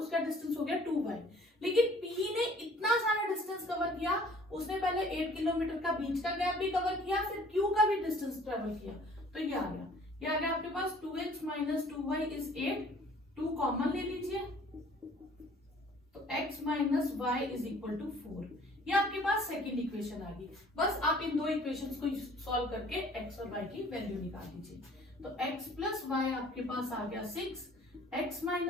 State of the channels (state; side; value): normal; both; correlation 0.53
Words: डिस्टेंस हो गया 2y। लेकिन P ने इतना सारा डिस्टेंस कवर किया, उसने पहले 8 किलोमीटर का बीच का गैप भी कवर किया, फिर Q का भी डिस्टेंस ट्रेवल किया, तो ये आ गया आपके पास 2x minus 2y is 8, 2 common ले लीजिए, तो x minus Y is equal to 4। ये आपके पास सेकेंड इक्वेशन आ गई। बस आप इन दो इक्वेशंस को सॉल्व करके x और y की वैल्यू निकाल दीजिए। तो x प्लस वाई आपके पास आ गया 6, x